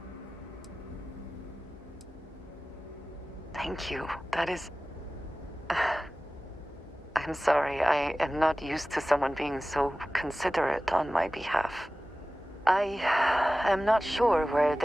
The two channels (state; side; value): normal; both; correlation 0.96